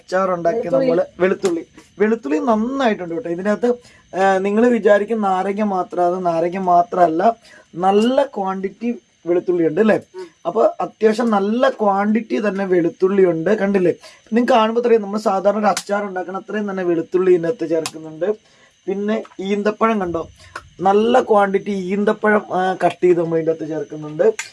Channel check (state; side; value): identical; both; correlation 1.00